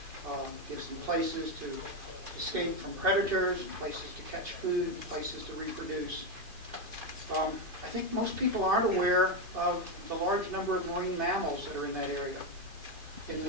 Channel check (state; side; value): late; left; 2.5 ms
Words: gives them places to escape from predators, places to catch food, places to reproduce. I think most people aren't aware of the large number of marine mammals that are in that area. In the